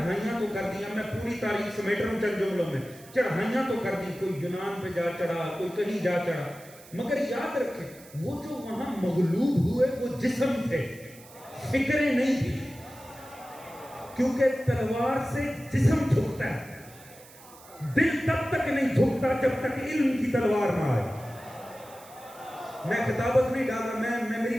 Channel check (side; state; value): right; noise; hiss, 21 dB below the sound